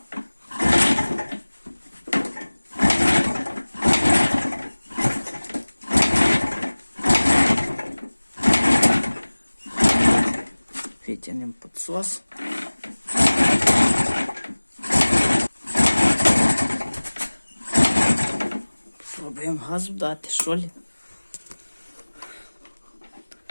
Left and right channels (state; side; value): inverted; both; correlation -1.00